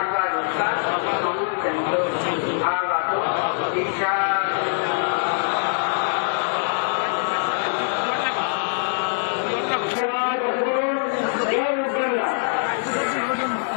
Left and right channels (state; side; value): silent; right; digital silence